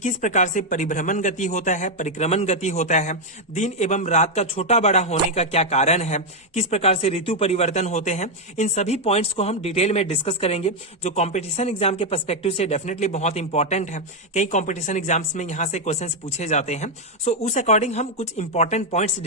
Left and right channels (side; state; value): both; normal; correlation 0.02